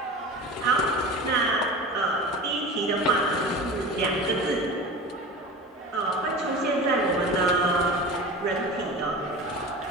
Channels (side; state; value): both; normal; correlation 0.33